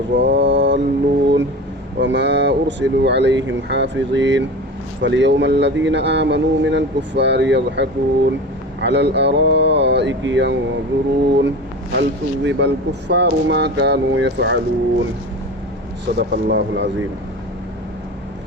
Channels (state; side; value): normal; both; correlation 0.31